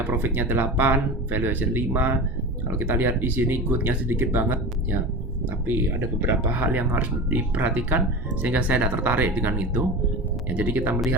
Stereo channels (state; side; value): normal; both; correlation 0.30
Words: profitnya 8, valuation 5. Kalau kita lihat di sini good-nya sedikit banget ya. Tapi ada beberapa hal yang harus diperhatikan sehingga saya tidak tertarik dengan itu. Ya, jadi kita